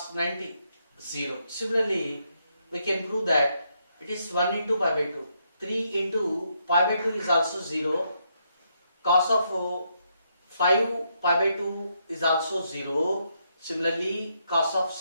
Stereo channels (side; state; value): both; inverted; correlation -0.78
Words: 90, 0. Similarly, we can prove that it is 1 into pi by 2. 3 into pi by 2 is also 0. Cos of 5 pi by 2 is also 0. Similarly, cos of